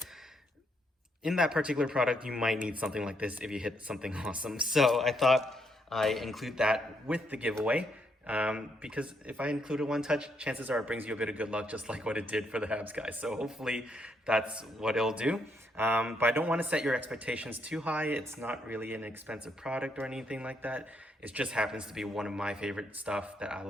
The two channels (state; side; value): normal; both; correlation 0.75